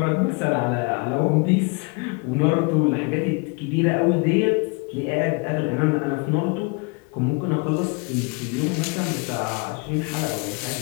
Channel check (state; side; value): quieter; right; 30.6 dB